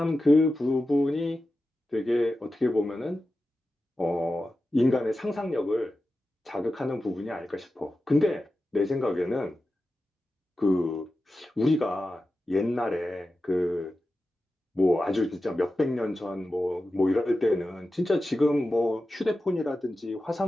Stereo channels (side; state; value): both; normal; correlation 0.92